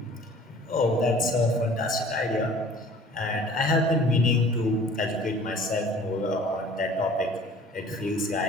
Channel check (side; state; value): both; normal; correlation 0.48